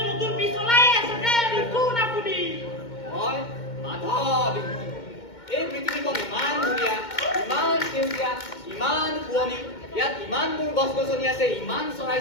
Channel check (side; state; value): right; late; 2.2 ms